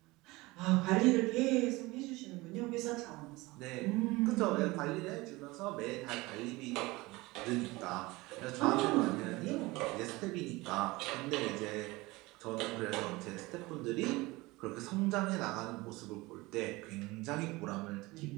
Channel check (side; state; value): left; quieter; 21.7 dB